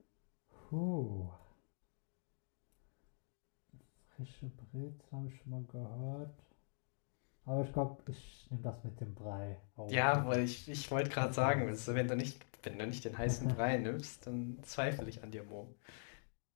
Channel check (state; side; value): silent; right; digital silence